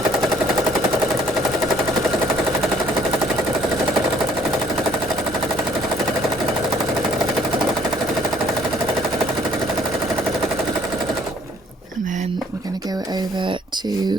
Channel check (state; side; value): normal; both; correlation 0.61